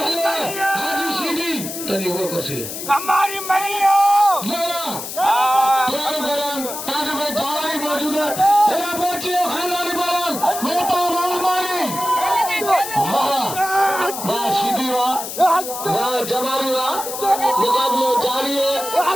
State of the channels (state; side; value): noise; left; hiss, 8 dB below the sound